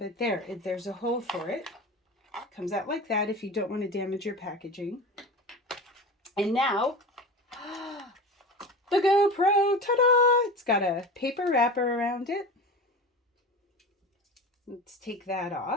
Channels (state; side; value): normal; both; correlation 0.31